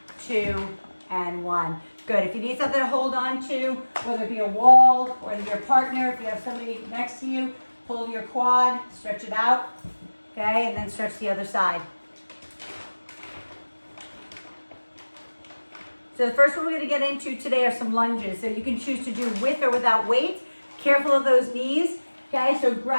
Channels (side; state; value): both; inverted; correlation -1.00